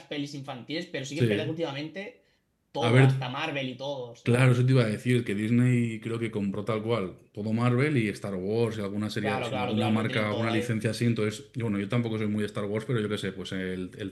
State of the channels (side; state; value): both; identical; correlation 1.00